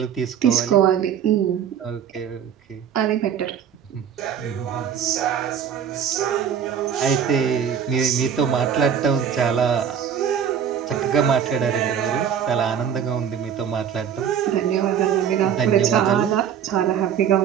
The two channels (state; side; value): quieter; left; 8.3 dB